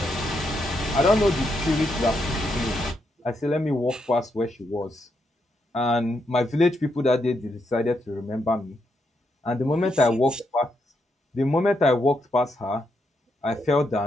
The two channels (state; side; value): normal; both; correlation 0.80